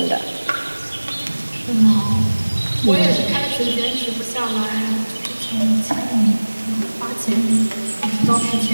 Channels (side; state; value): both; inverted; correlation -1.00